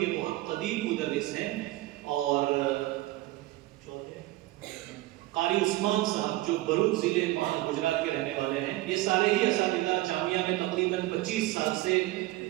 بہت قدیم مدرس ہیں. اور قاری عثمان صاحب جو بروچ ضلع گجرات کے رہنے والے ہیں. یہ سارے ہی اساتذہ جامعہ میں تقریباً 25 سال سے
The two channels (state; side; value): quieter; left; 17.9 dB